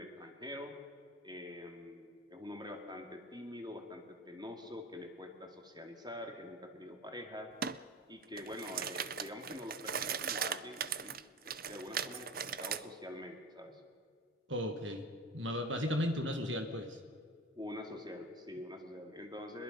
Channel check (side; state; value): both; normal; correlation 0.33